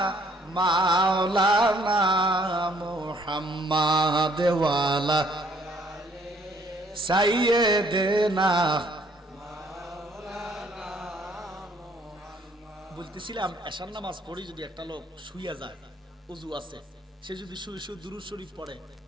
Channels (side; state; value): both; normal; correlation 0.63